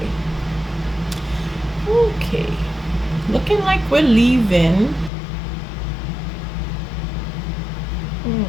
Okay. Looking like we're leaving.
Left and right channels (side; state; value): right; drops out; at 5.1 s